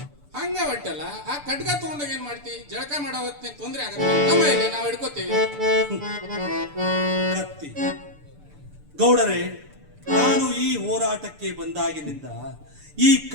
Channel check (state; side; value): late; left; 6.8 ms